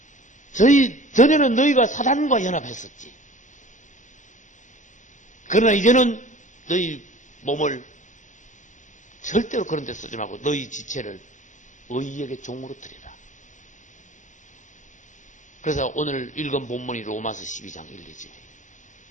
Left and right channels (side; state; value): right; late; 0.36 ms